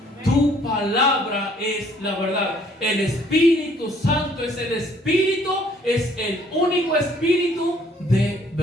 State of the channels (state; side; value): normal; both; correlation 0.62